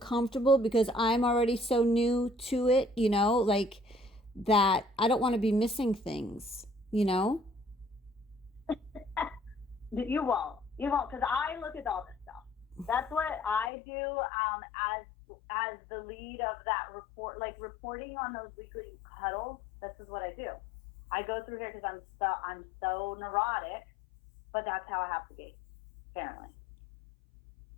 because I'm already so new to it, you know, like that I don't want to be missing things, you know? You won't, because I look at all this stuff. That's what I do as the lead of that report, like reporting on those weekly huddles. This is what I do. I go through here because I'm so neurotic, but that's how I have to be, apparently.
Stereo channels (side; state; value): right; drops out; at 13.7 s